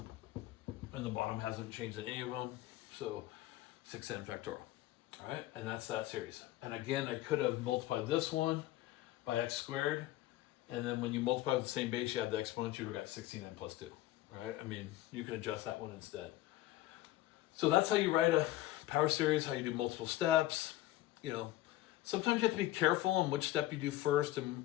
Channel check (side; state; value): right; quieter; 15.6 dB